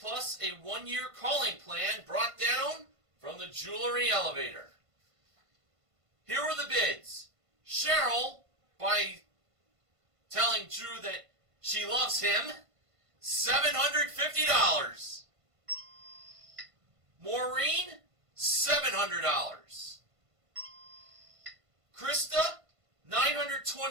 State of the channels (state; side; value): late; left; 1.5 ms